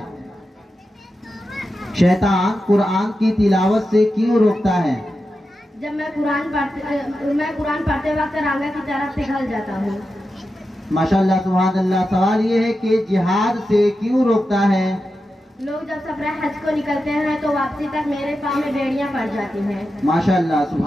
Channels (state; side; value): normal; both; correlation 0.90